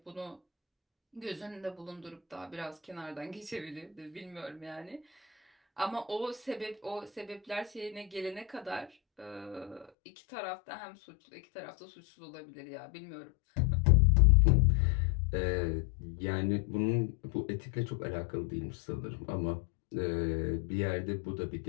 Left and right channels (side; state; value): right; drops out; at 9.9 s